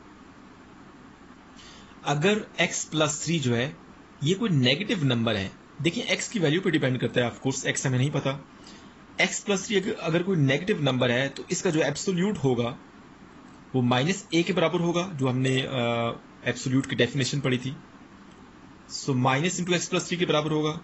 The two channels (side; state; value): both; identical; correlation 1.00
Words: अगर x प्लस 3 जो है ये कोई नेगेटिव नंबर है, देखिए x की वैल्यू पे डिपेंड करता है, ऑफ कोर्स x हमें नहीं पता। x प्लस 3 अगर कोई नेगेटिव नंबर है तो इसका जो एब्सोल्यूट होगा वो -a के बराबर होगा, जो हमने एब्सोल्यूट की डेफिनेशन पढ़ी थी। So minus into X plus 3 के बराबर होगा।